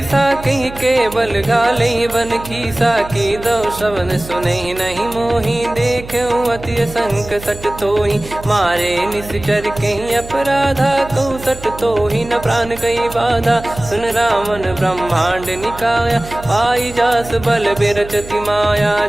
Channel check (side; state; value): right; noise; hum, 14 dB below the sound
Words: कहीं केवल गाले बन खीसा। की दो श्रवण सुने नहीं मोही, देखे अति संक सट तोही। मारे निश्चर कहीं अपराधा, कहूँ सट तोही न प्राण कहीं बाधा। सुन रावण ब्रह्मांड निकाया, पाई जास बल बिरचति माया।